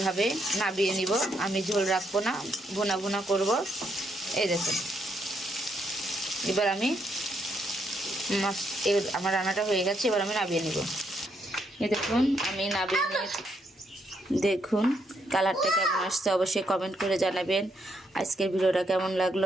নাবিয়ে নিব। আমি ঝোল রাখবো না, ভুনা ভুনা করব। এই দেখুন এবার আমি মাছ আমার রান্নাটা হয়ে গেছে। এবার আমি নাবিয়ে নিব। এই দেখুন আমি নাবিয়ে নিয়ে দেখুন কালারটা কেমন আসছে অবশ্যই কমেন্ট করে জানাবেন। আজকের ভিডিওটা কেমন লাগলো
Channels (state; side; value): normal; both; correlation 0.76